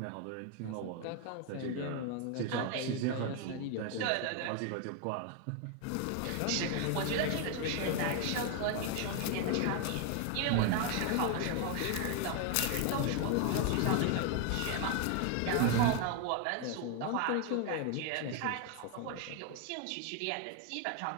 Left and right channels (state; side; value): different; both; correlation 0.01